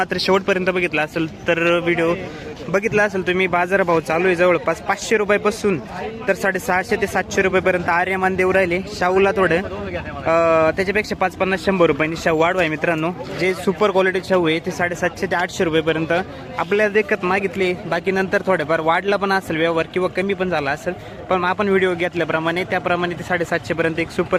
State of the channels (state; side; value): identical; both; correlation 1.00